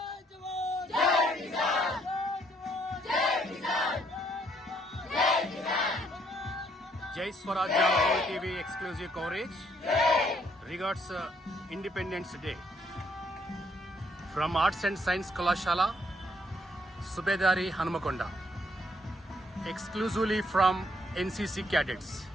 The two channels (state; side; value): normal; both; correlation 0.69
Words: Jai Swarajya World TV exclusive coverage regards Independence Day from Arts and Science Kalashala, Subedari Hanmakonda, exclusively from NCC cadets.